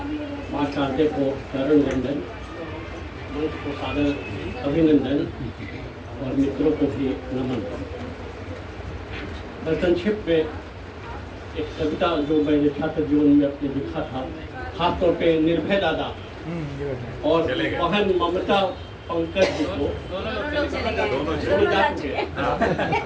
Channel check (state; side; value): identical; both; correlation 1.00